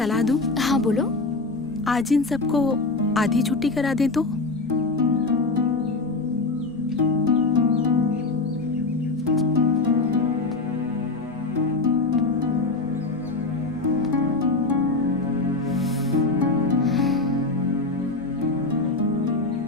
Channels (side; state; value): right; quieter; 3.5 dB